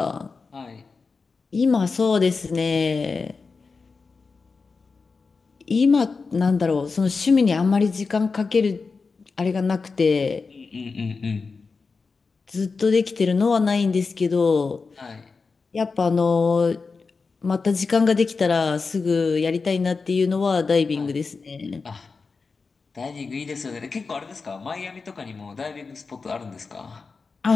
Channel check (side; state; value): right; quieter; 4.5 dB